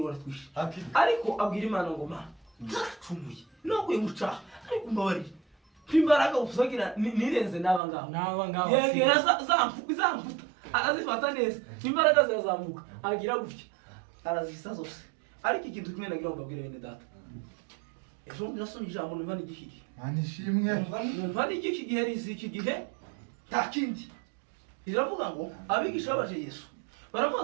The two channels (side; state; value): left; drops out; at 7.8 s